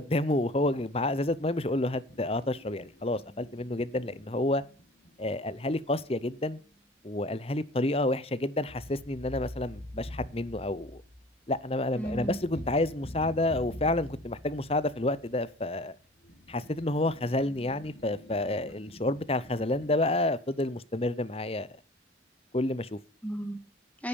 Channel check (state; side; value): normal; both; correlation 0.45